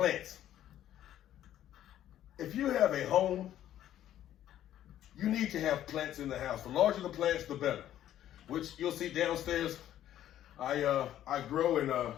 If you have a home, you need to have plants in the house. The larger the plants, the better. Which you'll see downstairs. I grow and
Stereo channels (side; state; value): right; quieter; 11.9 dB